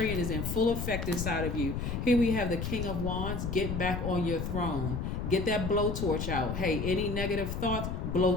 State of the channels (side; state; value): left; noise; rumble, 3 dB below the sound